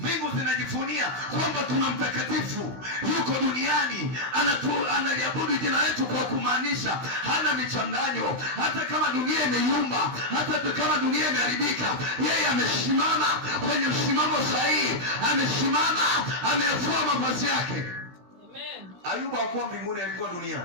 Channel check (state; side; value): late; left; 16 ms